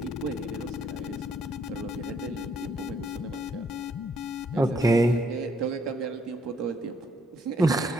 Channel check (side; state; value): both; normal; correlation 0.69